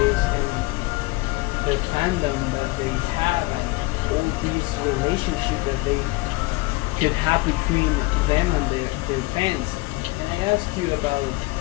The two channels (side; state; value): right; quieter; 22.6 dB